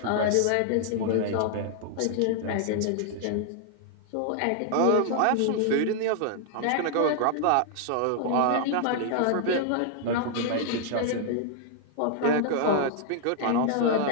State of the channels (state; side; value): different; both; correlation 0.00